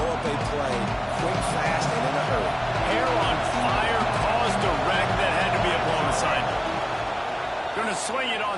up a play quick, fast, and in a hurry. Hair on fire caused a wreck that had to be a blown assignment. Going to swing it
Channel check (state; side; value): identical; both; correlation 1.00